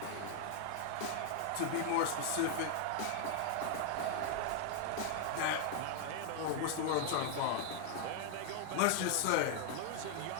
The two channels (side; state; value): both; different; correlation 0.00